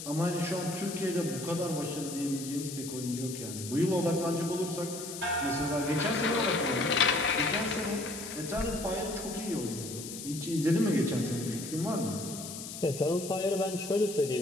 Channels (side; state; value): left; noise; hiss, 9 dB below the sound